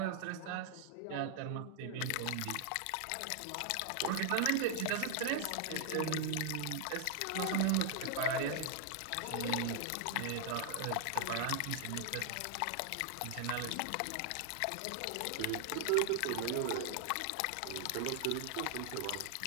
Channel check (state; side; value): different; both; correlation 0.00